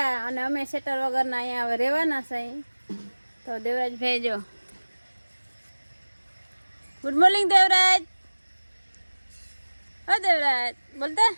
અને અમે સેટર વગરના અહીંયા હવે રહેવાના છે। તો દેવરાજભાઈ જો, ગુડ મોર્નિંગ દેવરાજ। ઓ દેવરાજ બોલતા,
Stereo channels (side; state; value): both; inverted; correlation -1.00